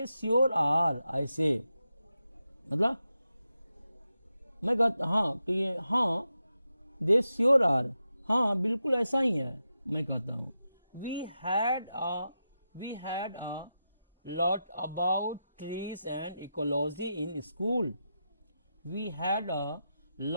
श्योर आर, ऐसे मतलब मैं कहता हाँ कि ये हाँ, दे श्योर आर, हाँ बिल्कुल ऐसा ही है, मैं कहता हूँ। We had a lot about trees and ecology in school. We had a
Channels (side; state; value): both; inverted; correlation -0.88